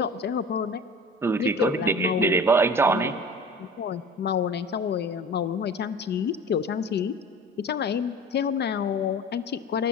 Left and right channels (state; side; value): normal; both; correlation 0.39